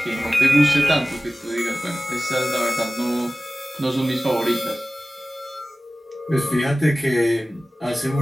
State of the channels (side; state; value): both; normal; correlation 0.97